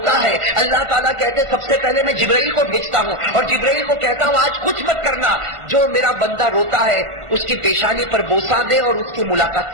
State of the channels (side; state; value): left; late; 1.5 ms